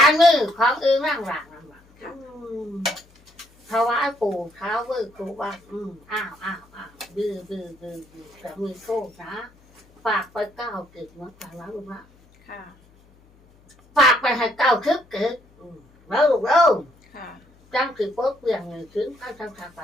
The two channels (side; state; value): left; noise; hum, 29 dB below the sound